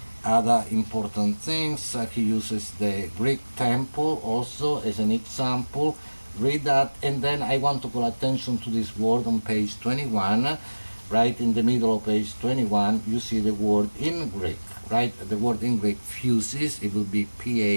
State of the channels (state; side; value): inverted; both; correlation -1.00